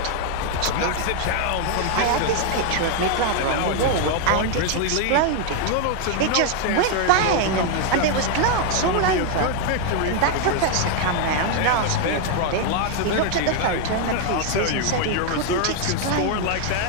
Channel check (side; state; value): both; different; correlation 0.00